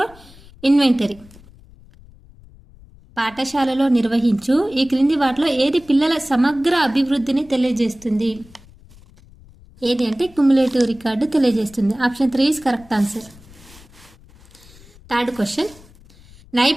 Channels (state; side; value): noise; left; rumble, 24 dB below the sound